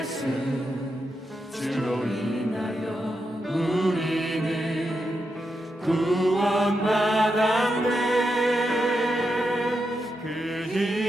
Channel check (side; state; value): both; normal; correlation 0.85